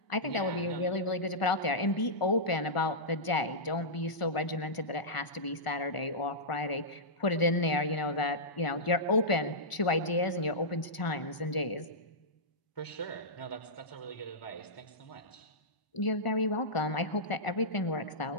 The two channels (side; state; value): right; late; 1.4 ms